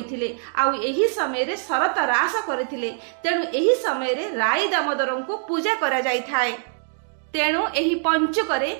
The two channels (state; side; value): silent; left; digital silence